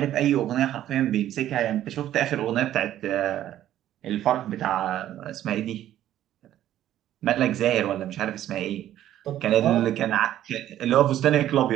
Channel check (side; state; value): left; quieter; 12.3 dB